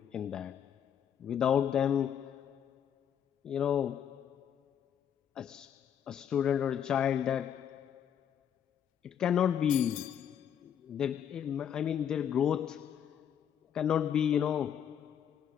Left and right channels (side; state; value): right; quieter; 9.0 dB